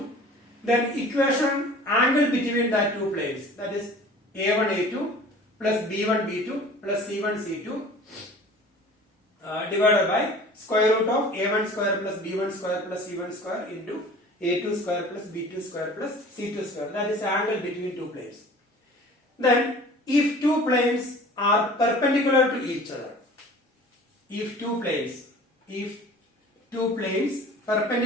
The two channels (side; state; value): both; normal; correlation 0.44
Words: Then equation angle between the two planes, that is a1 a2 plus b1 b2 plus c1 c2 divided by square root of a1 square plus b1 square plus c1 square into a2 square plus b2 square plus c2 square. That is angle between two planes. Then if two planes are perpendicular to each other, if two planes